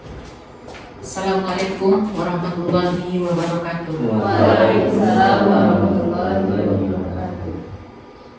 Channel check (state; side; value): identical; both; correlation 1.00